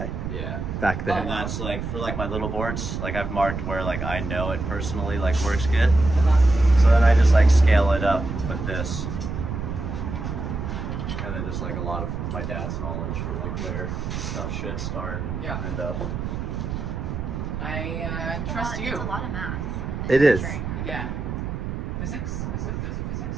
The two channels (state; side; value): noise; right; rumble, 4 dB below the sound